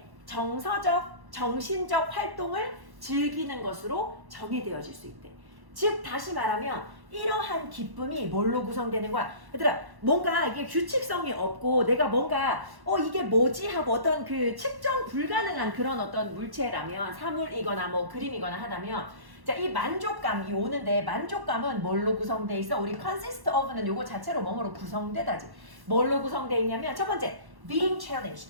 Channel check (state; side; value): late; left; 1.1 ms